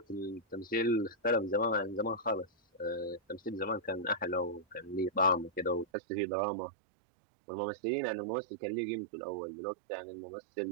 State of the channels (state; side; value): drops out; left; at 5.9 s